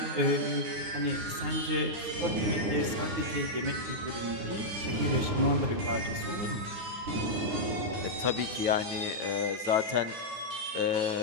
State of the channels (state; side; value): late; left; 9.7 ms